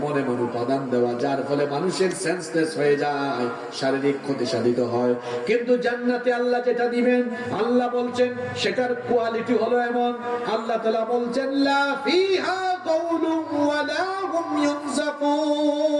এমন উপাদান দেওয়া যার ফলে মানুষের সেন্সলেস হয়ে যায়, শারীরিক ক্ষতি সাধিত হয়। কিন্তু জান্নাতে আল্লাহ যেটা দিবেন, আল্লাহ বলছেন সেটার কোয়ালিটি হলো এমন। আল্লাহ তাআলা বলছেন লা ফিহা গাউলুন ওয়া লা হুম ইউনজাফুন,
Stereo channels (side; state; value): both; identical; correlation 1.00